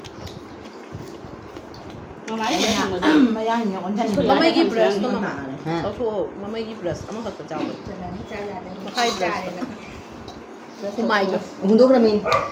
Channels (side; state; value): both; identical; correlation 1.00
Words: Mama give breast to mama. Also mama give breast. Ama kata jawab. Makai breast. Kumai jo. Untuk kami.